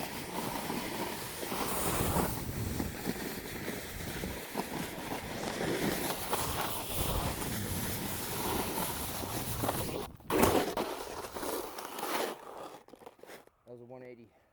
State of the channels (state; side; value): identical; both; correlation 1.00